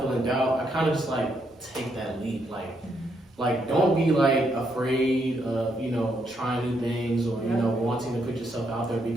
in doubt, I kind of just like take that leap, like don't be like afraid of trying new things or wanting to put yourself out there,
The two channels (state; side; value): normal; both; correlation 0.76